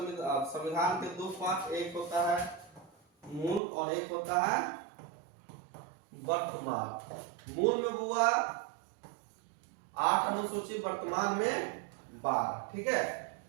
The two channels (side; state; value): left; drops out; at 3.6 s